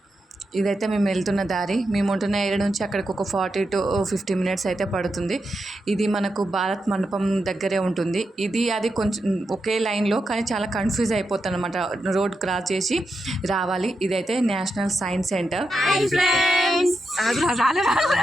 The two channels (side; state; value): both; normal; correlation 0.87